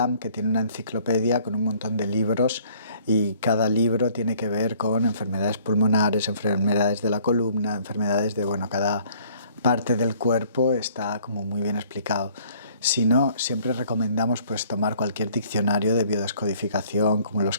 que tiene una enciclopedia con un montón de libros y cada libro tiene que ver con enfermedades pulmonares, enfermedades de la columna, enfermedades de, bueno, cada parte del cuerpo está como muy bien explicado. Si no, siempre recomendamos pues tomar cualquier diccionario de biodescodificación, como los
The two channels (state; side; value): inverted; both; correlation -0.58